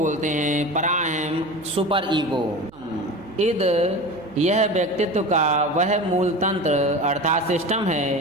हैं, पराअहम सुपर ईगो। इद यह व्यक्तित्व का वह मूल तंत्र अर्थात सिस्टम है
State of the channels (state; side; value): noise; right; hum, 25 dB below the sound